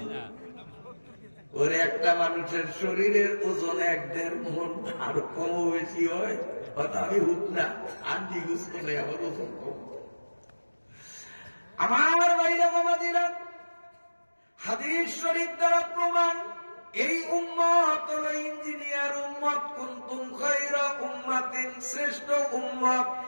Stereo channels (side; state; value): both; inverted; correlation -1.00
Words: ওর একটা মানুষের শরীরের ওজন 1.5 মণ, আর কম বেশি হয়। আমি হুক না, আন্টি গুছ করে আমার ওজন কম। আমার ভাইরা বাবাজিরা, হাদিস শরীফ দ্বারা প্রমাণ, এই উম্মত হলো ইঞ্জিনিয়ার উম্মত। কুনতুম খায়রা উম্মাতিন, শ্রেষ্ঠ উম্মত।